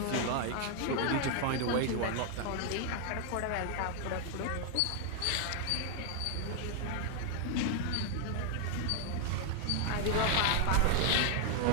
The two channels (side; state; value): both; different; correlation 0.00